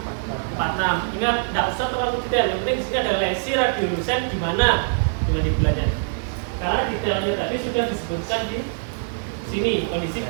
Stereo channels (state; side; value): silent; left; digital silence